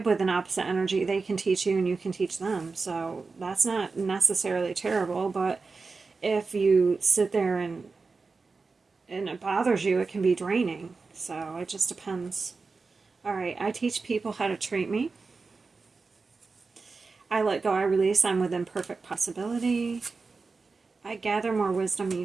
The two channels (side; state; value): left; quieter; 4.3 dB